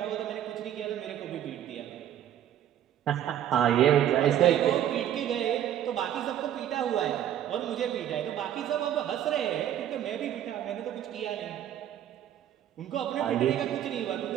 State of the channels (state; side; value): quieter; left; 10.9 dB